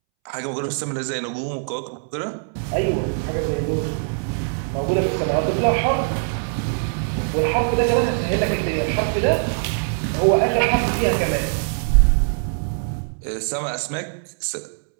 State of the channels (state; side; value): silent; left; 64 dB below the other